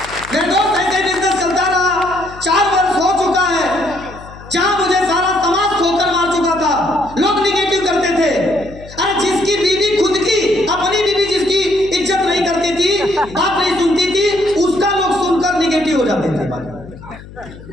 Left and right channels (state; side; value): noise; left; hum, 18 dB below the sound